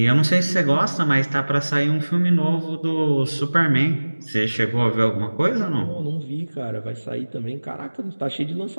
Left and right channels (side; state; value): both; inverted; correlation -1.00